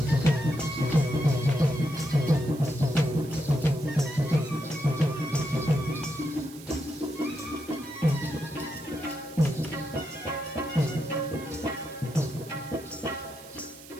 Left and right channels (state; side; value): noise; right; hiss, 19 dB below the sound